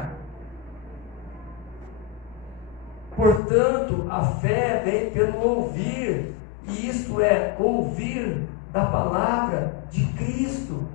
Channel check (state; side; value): drops out; right; at 3.4 s